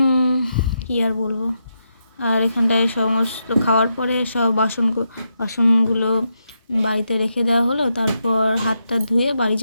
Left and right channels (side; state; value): both; inverted; correlation -0.84